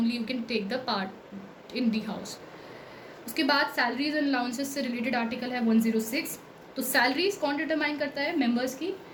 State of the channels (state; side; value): identical; both; correlation 1.00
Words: you can take the part in the house. उसके बाद सैलरीज एंड अलाउंसेस से रिलेटेड आर्टिकल है 106। तो सैलरीज कौन डिटरमाइन करता है? मेंबर्स की,